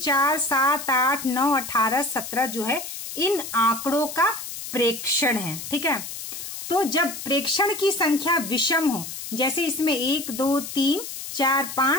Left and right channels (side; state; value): left; noise; hiss, 9 dB below the sound